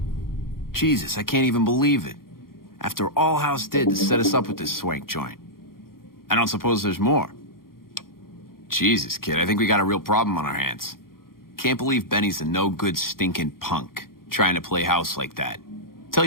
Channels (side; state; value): right; late; 0.92 ms